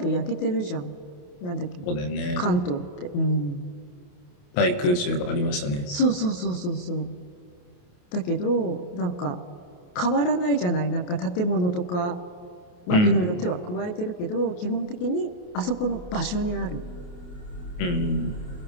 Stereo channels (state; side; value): late; right; 28 ms